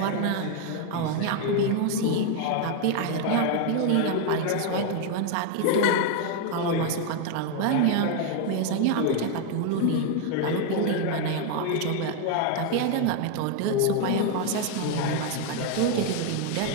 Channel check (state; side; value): different; both; correlation 0.00